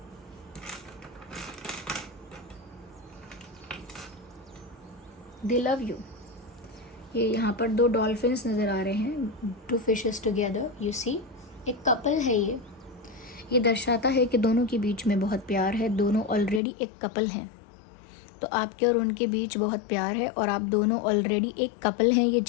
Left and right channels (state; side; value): drops out; right; at 16.6 s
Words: दे लव यू। ये यहाँ पर दो डॉल्फिन्स नज़र आ रहे हैं, to fishes together, you see. एक कपल है ये दर्शाता है कि दोनों के बीच में बहुत प्यार है, दोनों ऑलरेडी एक कपल हैं। तो आपके और उनके बीच बहुत प्यार है और आप दोनों ऑलरेडी एक कपल हैं, ये